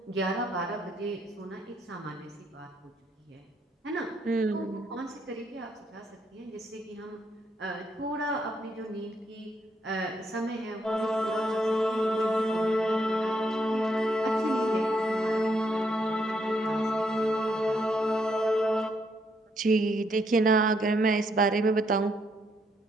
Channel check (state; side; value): normal; both; correlation 0.74